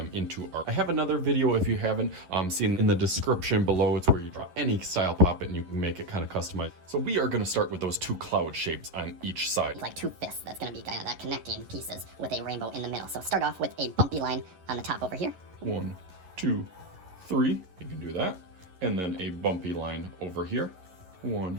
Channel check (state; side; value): late; left; 11 ms